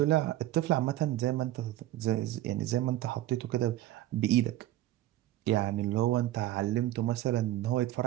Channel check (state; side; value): quieter; left; 14.5 dB